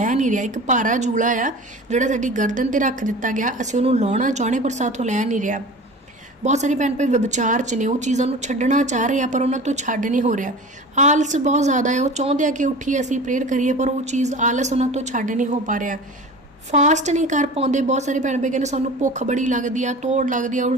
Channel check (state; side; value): normal; both; correlation 0.37